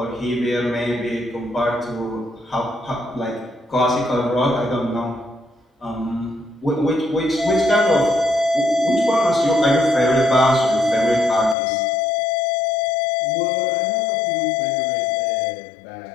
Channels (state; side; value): drops out; right; at 11.6 s